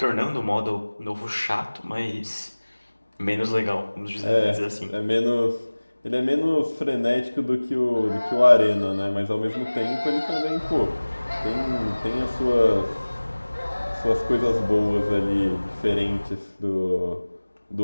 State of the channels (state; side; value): inverted; both; correlation -1.00